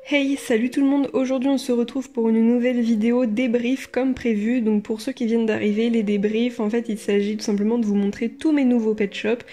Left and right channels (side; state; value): both; identical; correlation 1.00